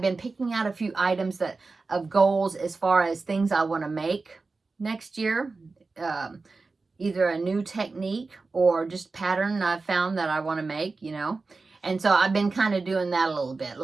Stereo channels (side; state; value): left; quieter; 3.9 dB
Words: been picking out a few items of goals as far as things I want to make next year. Either a new technique or just pattern I've found that I want to make, you know. And so I've been kind of doing that a